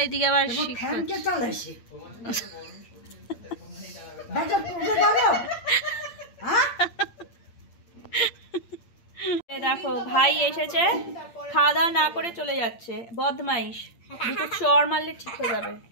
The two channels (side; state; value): right; late; 8.7 ms